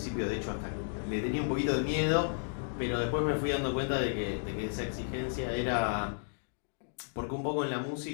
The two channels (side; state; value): right; silent; digital silence